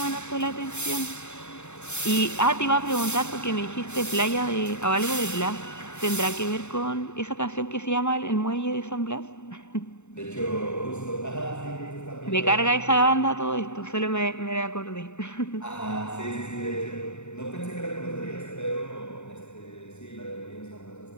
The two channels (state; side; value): late; right; 0.82 ms